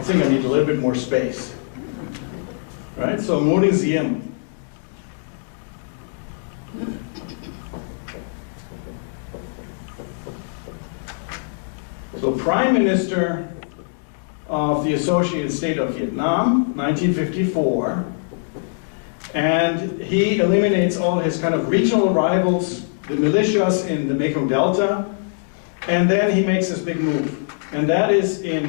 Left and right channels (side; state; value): right; silent; digital silence